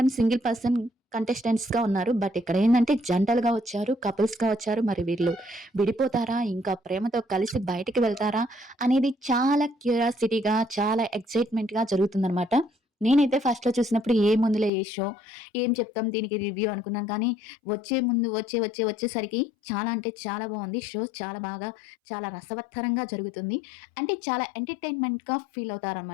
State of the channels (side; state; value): right; drops out; at 14.7 s